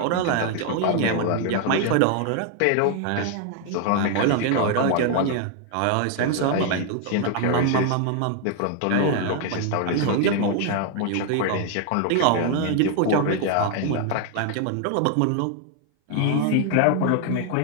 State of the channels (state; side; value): different; both; correlation 0.00